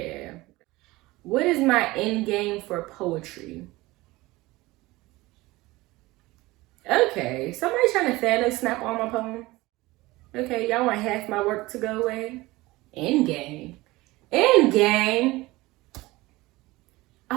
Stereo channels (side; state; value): left; quieter; 20.2 dB